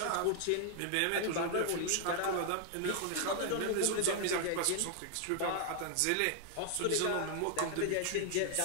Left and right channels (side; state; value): both; different; correlation 0.00